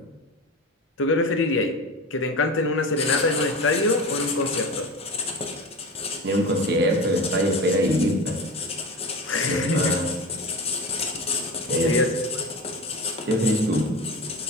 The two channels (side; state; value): both; normal; correlation 0.28